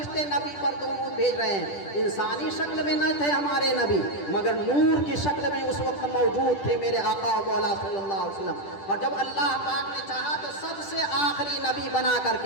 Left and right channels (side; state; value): right; late; 10 ms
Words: نبی پر درود بھیج رہے ہیں۔ انسانی شکل میں نہ تھے ہمارے نبی، مگر نور کی شکل میں اس وقت موجود تھے میرے آقا و مولا صلی اللہ علیہ وسلم، اور جب اللہ پاک نے چاہا تو سب سے آخری نبی بنا کر